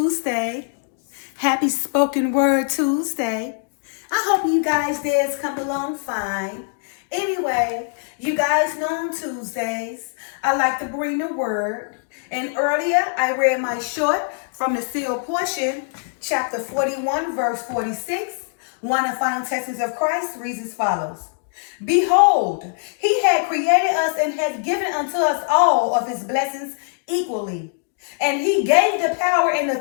happy spoken word Tuesday. I hope you guys days come along fine. Anyway, you guys know on Tuesdays, I like to bring the word. And earlier I read my short from the sealed portion, chapter 41, verse 46. One of the final texts of Christ reads as follows. Behold, he had created us and had given unto us all of his blessings equally. And he gave the power and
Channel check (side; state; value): right; silent; 60 dB below the other